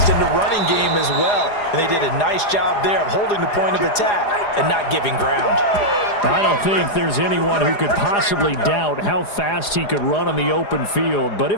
in the running game as well. And they did a nice job there of holding the point of attack and not giving ground. I don't think there's anyone who could possibly doubt how fast he could run on the open field. But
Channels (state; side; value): late; right; 4.9 ms